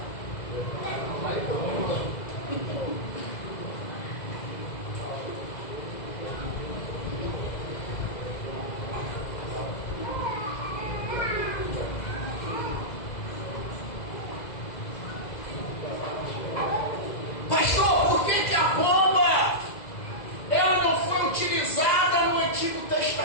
Pastor, por que a pomba ela não foi utilizada no Antigo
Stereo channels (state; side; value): late; right; 2.0 ms